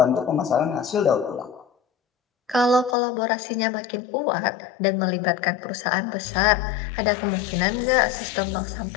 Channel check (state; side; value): drops out; right; at 3.0 s